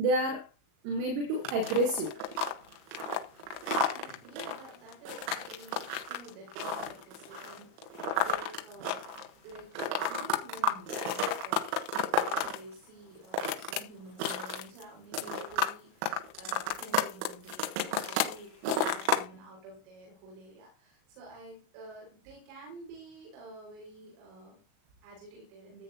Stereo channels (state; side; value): late; left; 38 ms